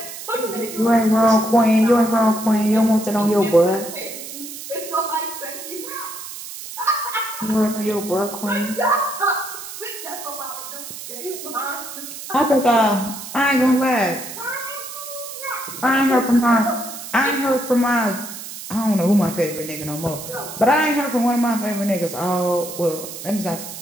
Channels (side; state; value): right; noise; hiss, 11 dB below the sound